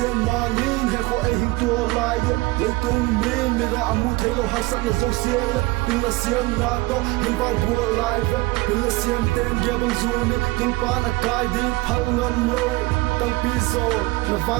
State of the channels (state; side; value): quieter; left; 21.9 dB